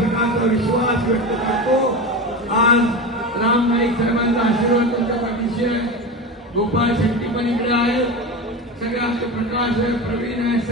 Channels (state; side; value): normal; both; correlation 0.24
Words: विश्वास व्यक्त करतो। आज राम नाईक साहेबांचा आशीर्वाद त्यांच्या पाठीशी आहे, गोपाळ शेट्टी पण इकडे आहेत, सगळे आमचे प्रकाश आहे, प्रवीण आहे,